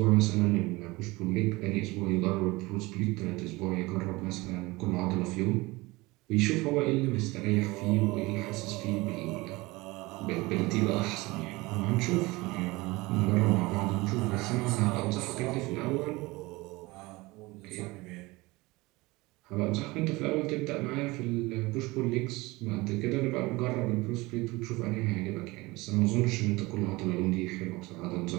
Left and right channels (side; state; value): left; quieter; 22.0 dB